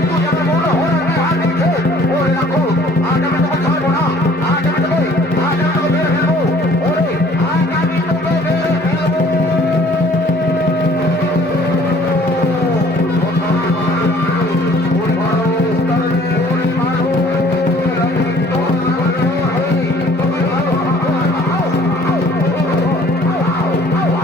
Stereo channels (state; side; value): normal; both; correlation 0.55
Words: তুই আমার মনোহরাকে হাত দিয়েছে। ওরে রাখো, আজ আমি তোকে ছাড়বো না, আজ আমি তোকে মেরে ফেলবো। ওরে আজ আমি তোকে মেরে ফেলবো।